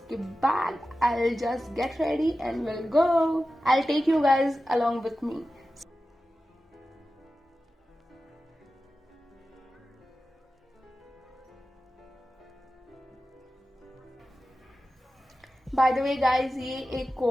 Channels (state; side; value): normal; both; correlation 0.94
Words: बाद I'll just get ready and we'll go. I'll take you guys along with me. Bye the way guys, ये एक